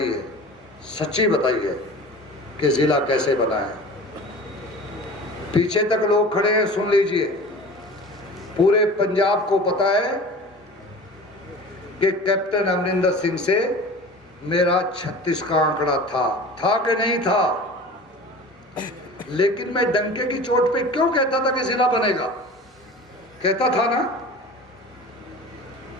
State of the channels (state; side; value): normal; both; correlation 0.38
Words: है, सच्ची बताई है कि जिला कैसे बना है। पीछे तक लोग खड़े हैं, सुन लीजिए। पूरे पंजाब को पता है कि कैप्टन अमरिंदर सिंह से मेरा 36 का आंकड़ा था कि नहीं था, लेकिन मैं डंके की चोट पे क्यों कहता था कि जिला बनेगा? कहता था ना,